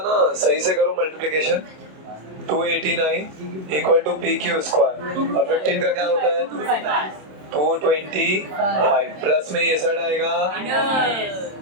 ना सही से करो multiplication. 289 equal to P Q square और 15 का क्या होता है? 225 प्लस में ये साइड आएगा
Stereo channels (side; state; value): left; late; 27 ms